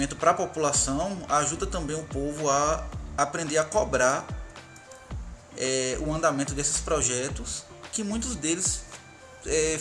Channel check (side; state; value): both; identical; correlation 1.00